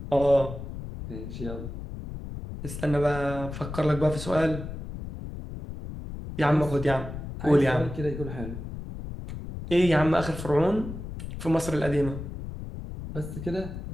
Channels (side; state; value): left; noise; rumble, 9 dB below the sound